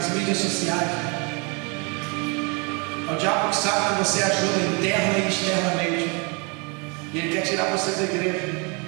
mídias sociais. É o diabo que sabe que você ajuda interna e externamente, e ele quer tirar você da igreja.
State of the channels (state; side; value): quieter; left; 32.0 dB